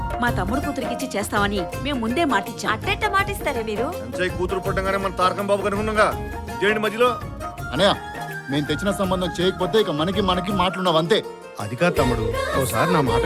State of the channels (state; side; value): identical; both; correlation 1.00